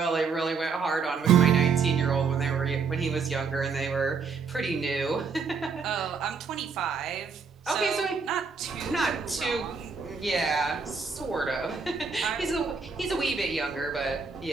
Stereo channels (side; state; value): left; quieter; 5.3 dB